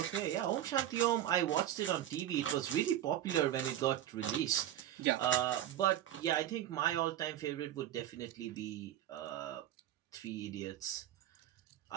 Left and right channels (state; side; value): quieter; left; 11.8 dB